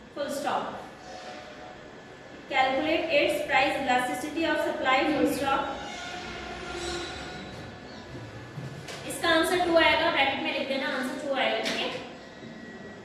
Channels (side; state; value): both; identical; correlation 1.00